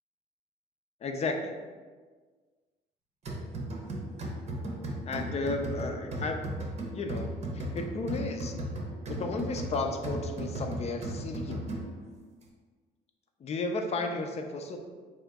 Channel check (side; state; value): both; normal; correlation 0.43